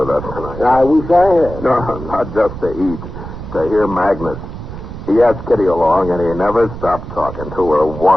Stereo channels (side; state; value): right; noise; rumble, 10 dB below the sound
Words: us tonight. I wish I had. No, not just to eat. To hear Magnus. He asked Kitty along, and he never stopped talking to her